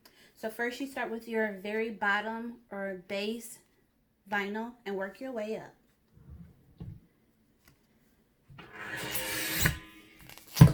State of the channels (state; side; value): identical; both; correlation 1.00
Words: So first you start with your very bottom or base vinyl and work your way up.